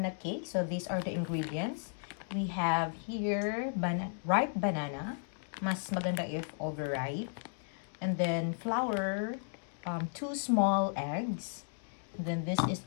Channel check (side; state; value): right; silent; digital silence